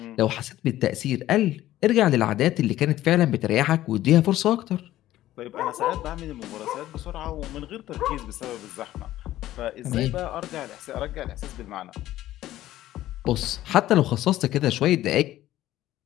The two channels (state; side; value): quieter; right; 14.3 dB